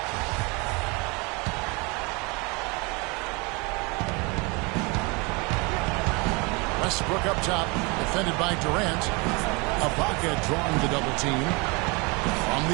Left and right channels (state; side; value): quieter; left; 28.5 dB